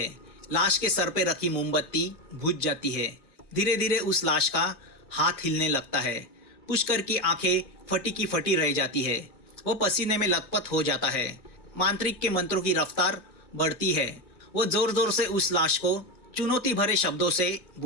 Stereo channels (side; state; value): right; late; 2.2 ms